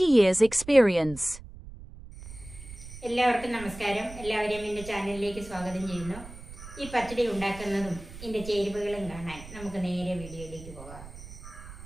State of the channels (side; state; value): right; noise; rumble, 15 dB below the sound